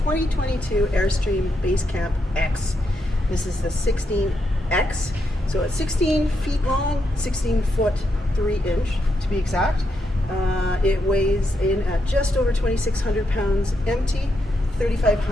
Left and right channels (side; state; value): both; normal; correlation 0.81